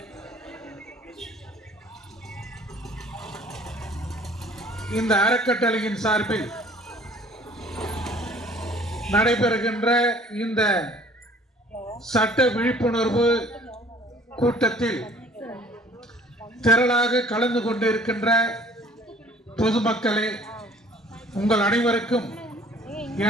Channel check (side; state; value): both; normal; correlation 0.53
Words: இந்த அறக்கட்டளையின் சார்பில் நடைபெறுகின்ற இந்த சட்ட விழிப்புணர்வு கூட்டத்தில் திரளாக கலந்து கொண்டிருக்கின்ற பொதுமக்களே, உங்கள் அனைவருக்கும்